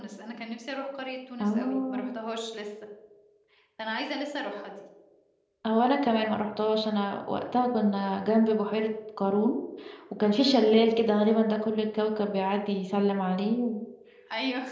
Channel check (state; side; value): identical; both; correlation 1.00